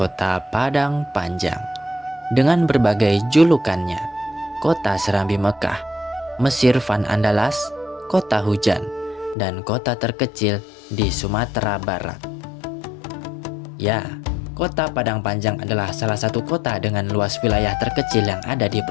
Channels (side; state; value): right; drops out; at 9.3 s